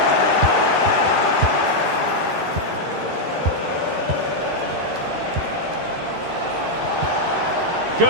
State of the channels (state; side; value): late; left; 13 ms